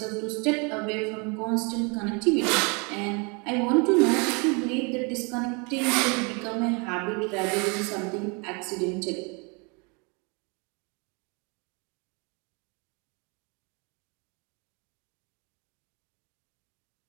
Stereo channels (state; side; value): quieter; left; 32.1 dB